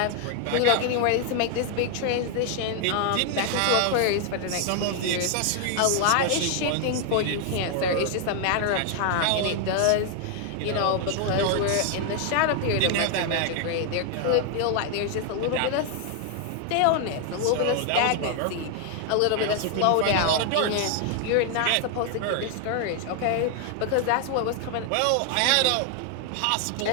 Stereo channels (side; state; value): both; different; correlation 0.00